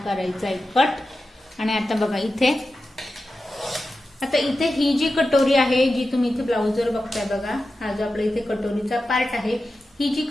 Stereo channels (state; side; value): normal; both; correlation 0.92